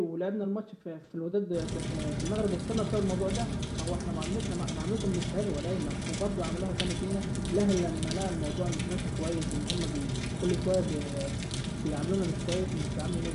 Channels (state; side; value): identical; both; correlation 1.00